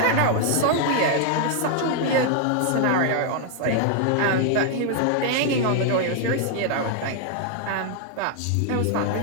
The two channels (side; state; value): both; different; correlation 0.00